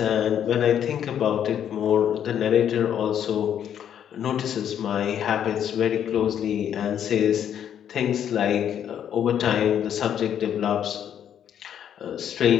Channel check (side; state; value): right; quieter; 9.4 dB